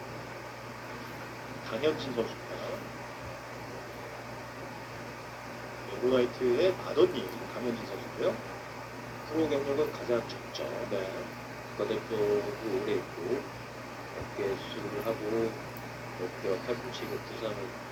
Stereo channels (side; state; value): both; identical; correlation 1.00